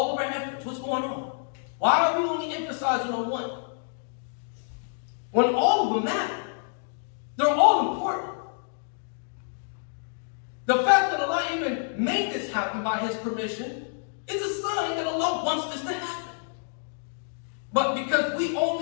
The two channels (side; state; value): right; silent; digital silence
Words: of our efforts. What's going on? Why are we only emphasizing on one? When all of them matter. They're all important. The fact that Allah even made this happen by His permission is a sign that Allah wants this to happen. But because we